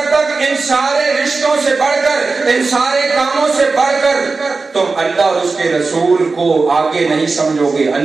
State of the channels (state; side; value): quieter; left; 4.0 dB